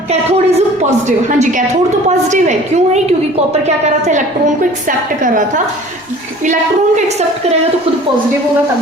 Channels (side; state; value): both; normal; correlation 0.46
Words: कैथोड इज पॉजिटिव। हाँ जी, कैथोड तो पॉजिटिव है, क्यों है, क्योंकि कॉपर क्या कर रहा था, इलेक्ट्रॉन को एक्सेप्ट कर रहा था। इलेक्ट्रॉन को एक्सेप्ट करेगा तो खुद पॉजिटिव होगा